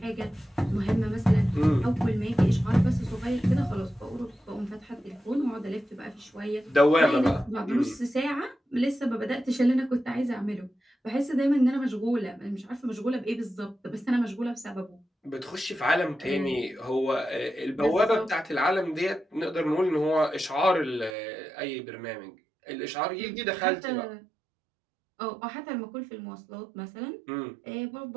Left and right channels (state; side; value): drops out; left; at 21.2 s